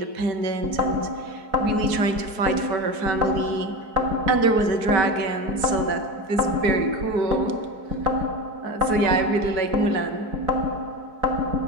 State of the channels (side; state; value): left; late; 4.6 ms